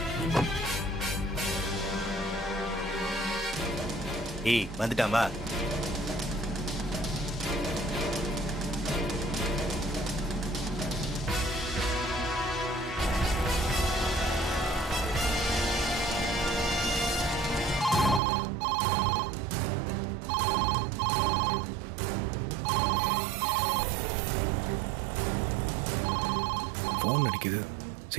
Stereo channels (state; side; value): drops out; left; at 18.2 s